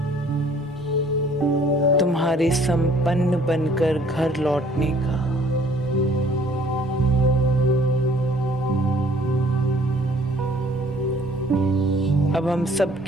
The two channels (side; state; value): both; normal; correlation 0.57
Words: तुम्हारे संपन्न बनकर घर लौटने का। अब हम